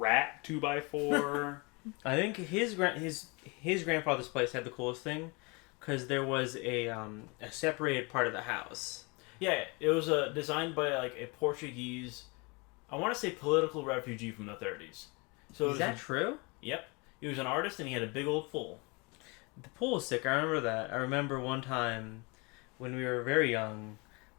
2x4. I think his grandfather's place had the coolest thing because there was a separated part of the house. Yeah, it was designed by like a Portuguese, I want to say political refugee from the 30s. So is that true? Yep. He was an artist and he had a big old pool. The pool was sick. I remember that. I remember one time when we were very young,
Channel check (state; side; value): quieter; right; 29.0 dB